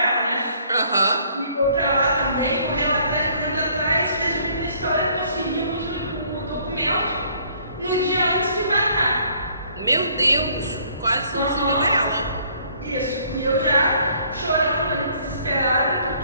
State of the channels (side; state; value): both; inverted; correlation -0.61